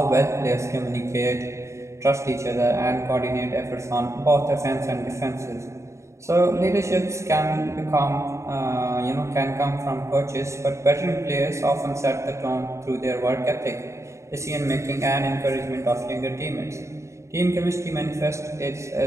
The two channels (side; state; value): left; late; 0.14 ms